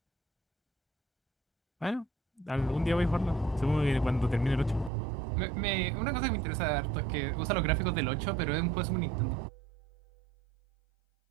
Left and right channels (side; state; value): left; drops out; at 4.9 s